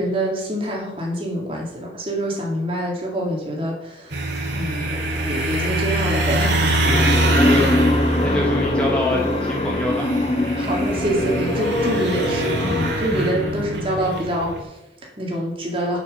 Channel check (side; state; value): both; normal; correlation 0.58